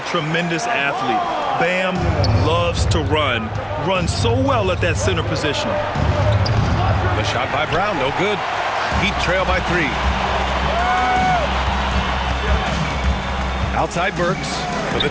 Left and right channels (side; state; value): both; identical; correlation 1.00